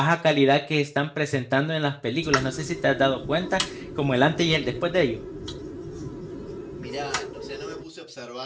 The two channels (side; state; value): both; identical; correlation 1.00